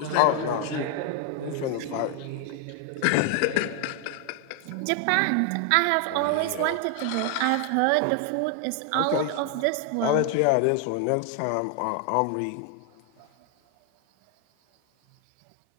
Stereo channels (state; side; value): different; both; correlation 0.00